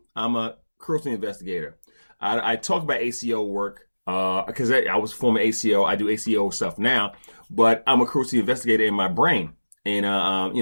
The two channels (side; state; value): both; inverted; correlation -1.00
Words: I'm a cruelty investigator. I talk about ACO work because I was former ACO. I do ACO stuff now, but I'm a cruelty investigator in my brain. And,